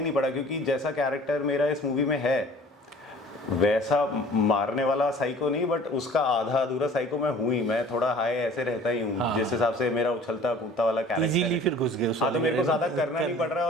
नहीं पड़ा, क्योंकि जैसा कैरेक्टर मेरा इस मूवी में है वैसा मारने वाला साइको नहीं, बट उसका आधा अधूरा साइको मैं हूँ ही। मैं थोड़ा हाई ऐसे रहता ही हूँ, जिस हिसाब से मेरा उछलता कूदता वाला कैरेक्टर इजीली फिर घुस गए हाँ, तो मेरे को ज़्यादा करना नहीं पड़ रहा है,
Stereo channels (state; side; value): normal; both; correlation 0.48